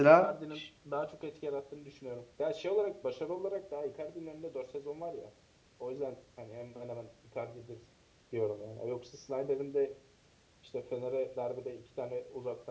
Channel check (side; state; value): both; identical; correlation 1.00